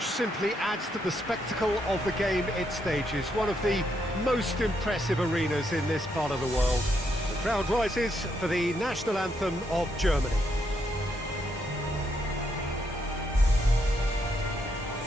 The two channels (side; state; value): both; normal; correlation 0.77